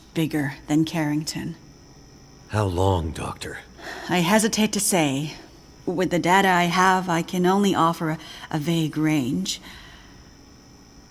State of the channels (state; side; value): identical; both; correlation 1.00